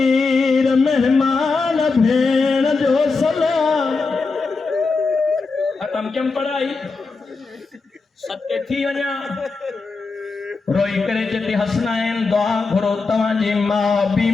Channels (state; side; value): quieter; right; 4.2 dB